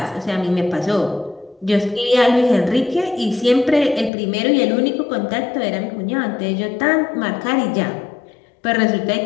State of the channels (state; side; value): drops out; right; at 4.1 s